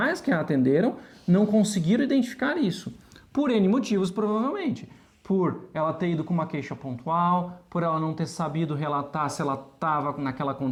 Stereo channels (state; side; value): identical; both; correlation 1.00